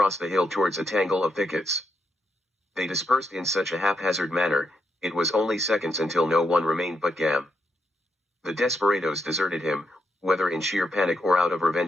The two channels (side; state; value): both; normal; correlation 0.80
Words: the hill towards a tangle of thickets. They dispersed in such a haphazard manner, it was only seconds until no one remained but Gam. The desperados deserted him, whether in sheer panic or out of